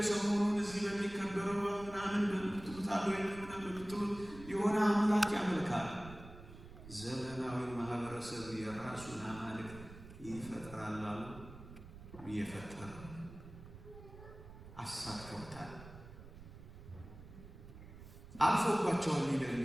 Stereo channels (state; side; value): noise; right; rumble, 16 dB below the sound